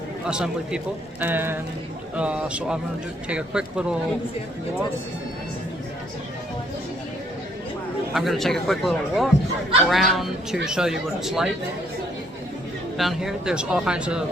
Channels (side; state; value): both; normal; correlation 0.67